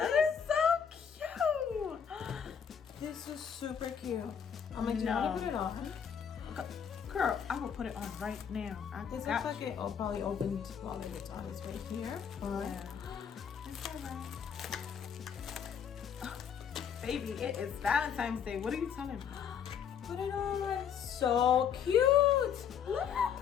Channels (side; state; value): right; quieter; 7.7 dB